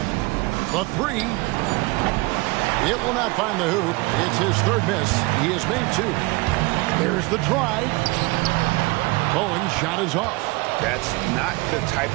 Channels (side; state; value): left; quieter; 24.7 dB